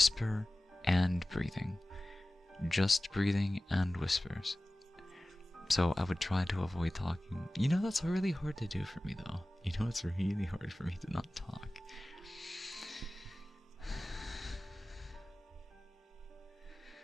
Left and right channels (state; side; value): normal; both; correlation 0.97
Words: and breathing. Just breathing and whispers. So I would try to avoid talking. You know, that's really hard to do for me, though. You know, it's really hard for me to not talk.